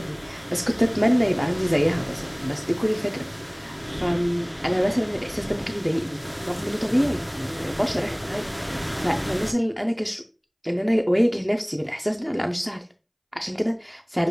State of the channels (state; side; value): identical; both; correlation 1.00